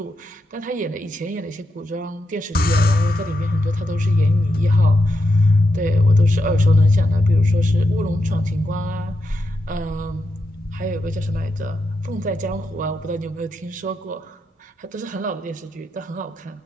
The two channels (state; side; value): normal; both; correlation 0.85